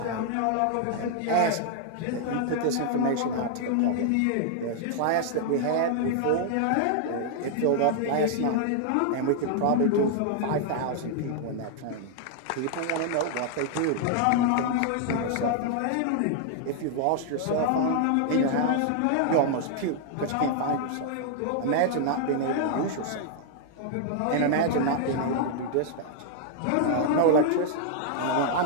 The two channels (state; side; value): different; both; correlation 0.00